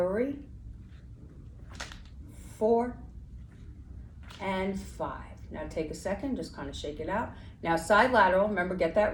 4, and 5. Now take a second, just kind of shake it out. Now side lateral, remember, get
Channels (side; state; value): both; identical; correlation 1.00